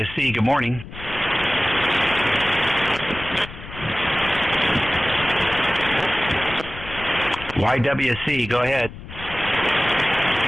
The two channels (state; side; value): noise; left; rumble, 14 dB below the sound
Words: good morning. YWC, go ahead.